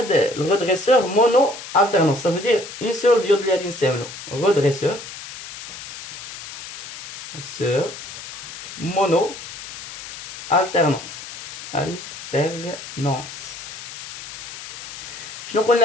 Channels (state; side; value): noise; left; hiss, 11 dB below the sound